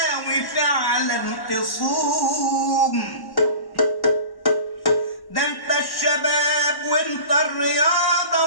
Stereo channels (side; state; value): right; late; 1.1 ms